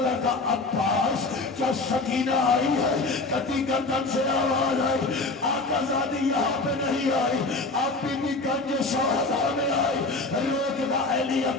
کا عباس کیا سکینہ آئی ہے. کٹی گردن سے آواز آئی, آقا زادی یہاں پہ نہیں آئی. اب بی بی گنج شہداء میں آئی, روک دا علی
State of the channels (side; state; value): right; quieter; 3.4 dB